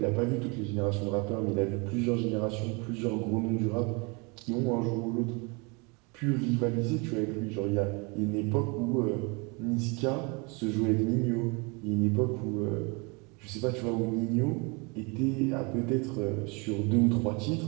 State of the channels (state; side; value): quieter; left; 30.3 dB